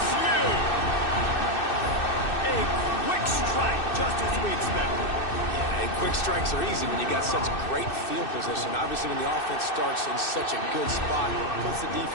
A quick strike, just as we expected. Yeah, and quick strikes are easy when you got such great field position. Obviously, when the offense starts in such a good spot, it puts the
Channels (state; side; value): late; right; 2.6 ms